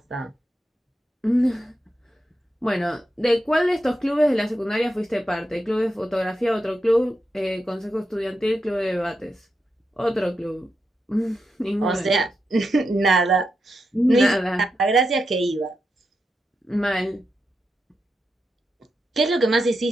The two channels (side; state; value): both; normal; correlation 0.86